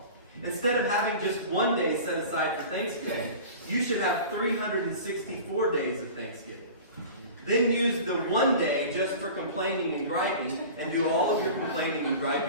Instead of having just one day set aside for Thanksgiving, you should have 364 days of Thanksgiving. Then use the one day just for complaining and griping, and do all of your complaining and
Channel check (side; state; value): both; inverted; correlation -0.38